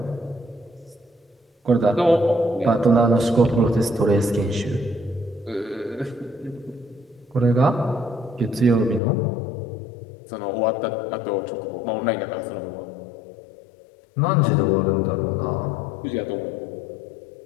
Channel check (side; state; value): right; drops out; at 9.0 s